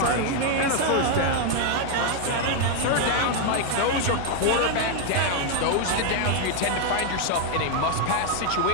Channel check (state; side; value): different; both; correlation 0.00